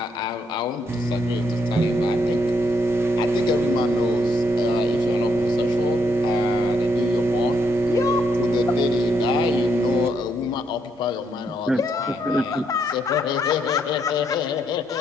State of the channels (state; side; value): normal; both; correlation 0.75